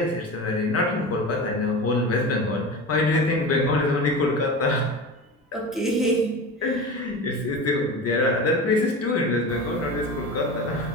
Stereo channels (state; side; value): normal; both; correlation 0.29